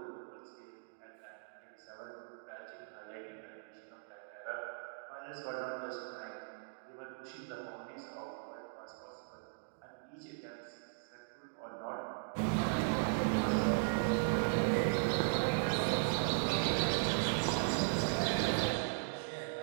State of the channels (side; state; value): left; silent; digital silence